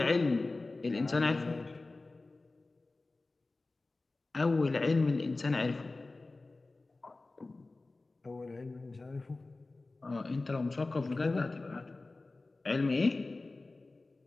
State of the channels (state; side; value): quieter; right; 3.3 dB